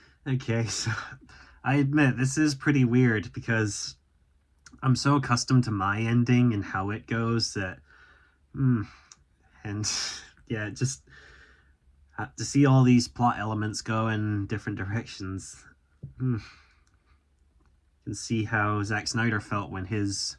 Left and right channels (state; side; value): identical; both; correlation 1.00